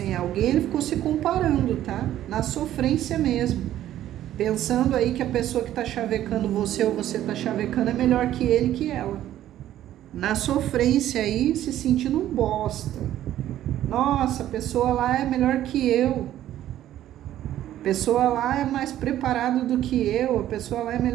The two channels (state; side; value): quieter; left; 12.6 dB